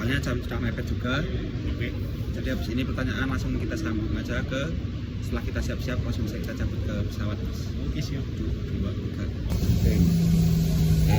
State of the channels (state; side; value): identical; both; correlation 1.00